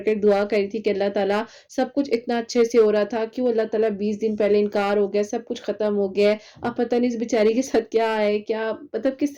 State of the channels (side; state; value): both; identical; correlation 1.00